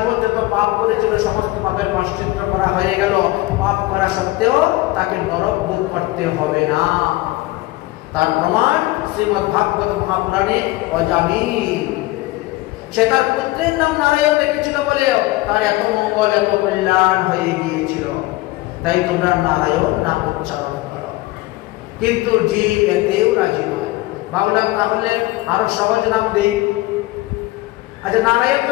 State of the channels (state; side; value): quieter; right; 19.2 dB